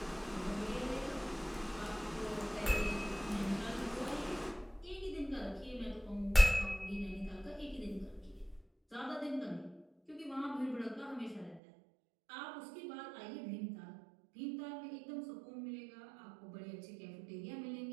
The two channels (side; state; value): left; drops out; at 11.6 s